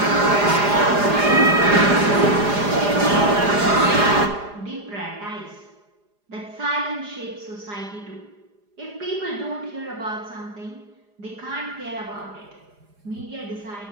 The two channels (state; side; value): late; left; 4.9 ms